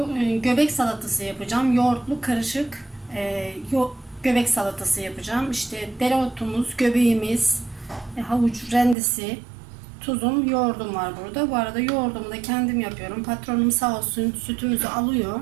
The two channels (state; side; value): drops out; left; at 9.0 s